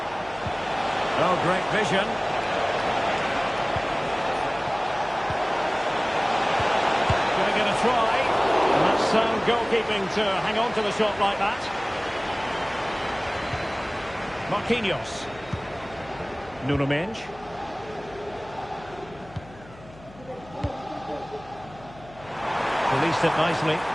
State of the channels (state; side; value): noise; left; hum, 21 dB below the sound